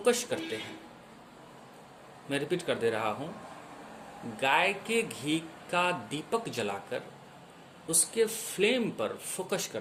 करते हैं, मैं रिपीट कर दे रहा हूं, गाय के घी का दीपक जलाकर उसके फ्लेम पर फोकस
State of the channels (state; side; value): identical; both; correlation 1.00